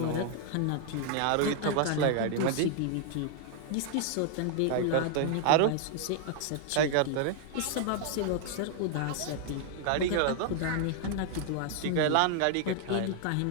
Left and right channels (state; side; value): different; both; correlation 0.00